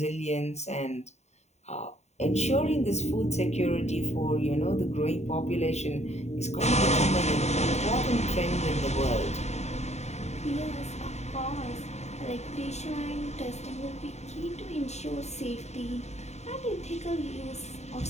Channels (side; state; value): right; late; 0.32 ms